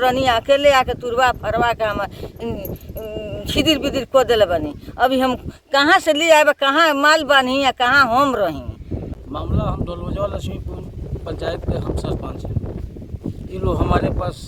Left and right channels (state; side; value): identical; both; correlation 1.00